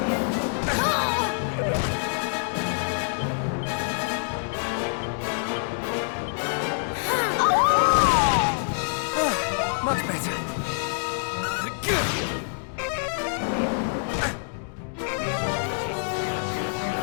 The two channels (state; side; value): silent; right; digital silence